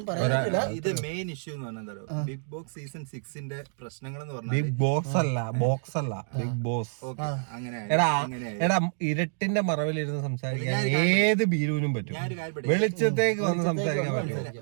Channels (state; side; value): silent; left; digital silence